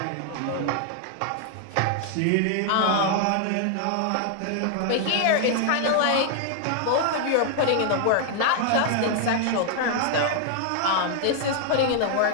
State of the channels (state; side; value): different; both; correlation 0.00